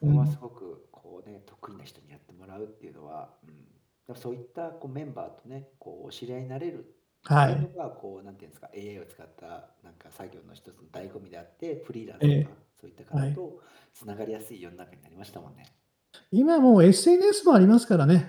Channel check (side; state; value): both; identical; correlation 1.00